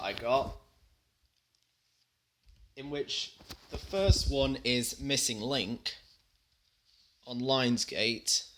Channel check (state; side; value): identical; both; correlation 1.00